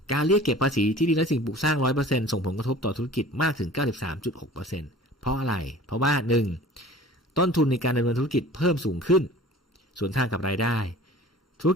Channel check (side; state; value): both; normal; correlation 0.44